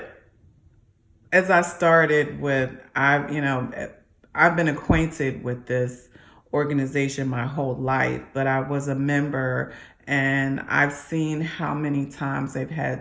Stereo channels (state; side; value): identical; both; correlation 1.00